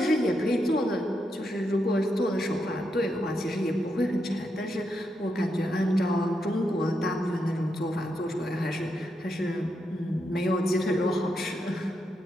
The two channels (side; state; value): both; normal; correlation 0.83